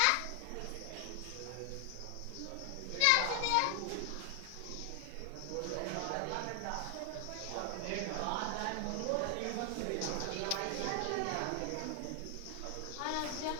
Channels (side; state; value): both; different; correlation 0.00